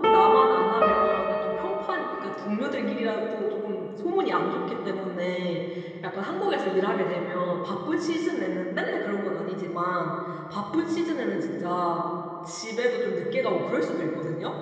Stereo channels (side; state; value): both; identical; correlation 1.00